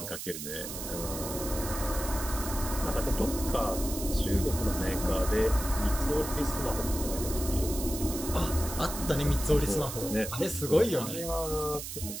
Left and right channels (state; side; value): noise; right; hiss, 7 dB below the sound